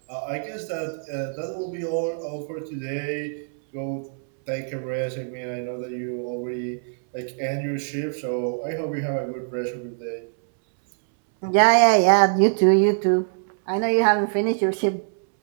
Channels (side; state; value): left; silent; 63 dB below the other